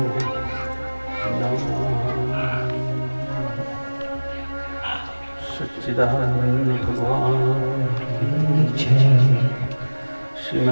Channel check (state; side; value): inverted; both; correlation -1.00